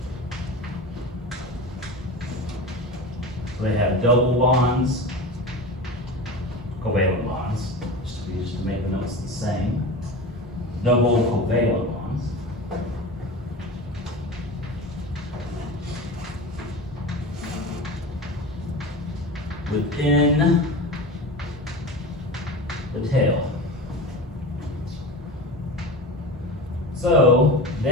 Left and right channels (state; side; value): normal; both; correlation 0.30